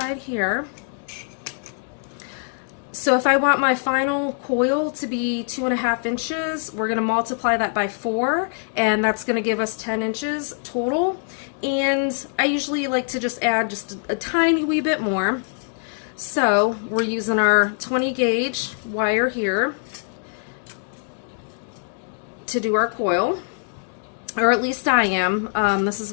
here. So if I want my final coil to be 2.5 inches, we're going to multiply that by 4, and that's going to give us 10 inches total. And I usually like to just add just a tiny wee bit more. So we're using our 20 gauge wire here to do our coil, or at least I am. This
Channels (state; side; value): silent; right; 63 dB below the other